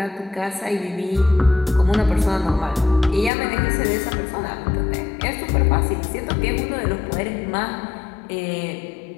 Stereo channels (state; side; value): drops out; right; at 3.3 s